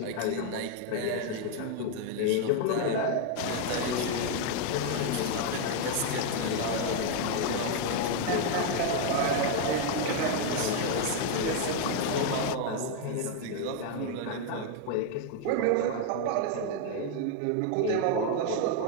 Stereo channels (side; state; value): both; different; correlation 0.01